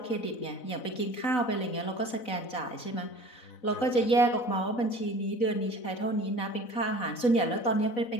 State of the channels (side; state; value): right; late; 4.0 ms